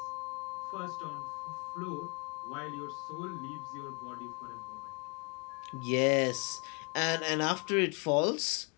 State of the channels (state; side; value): quieter; right; 33.3 dB